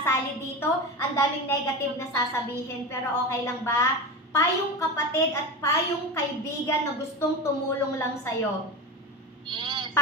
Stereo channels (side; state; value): both; normal; correlation 0.24